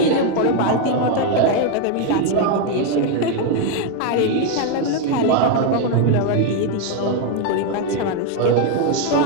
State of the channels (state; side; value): different; both; correlation 0.01